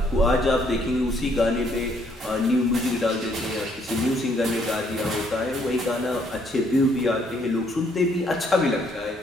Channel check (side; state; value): both; normal; correlation 0.68